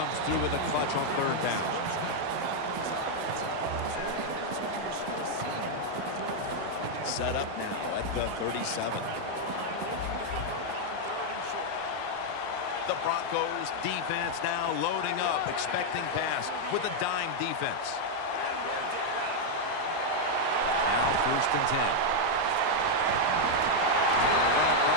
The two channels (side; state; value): both; different; correlation 0.00